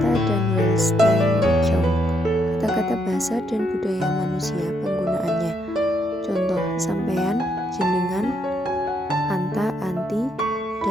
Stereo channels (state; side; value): normal; both; correlation 0.76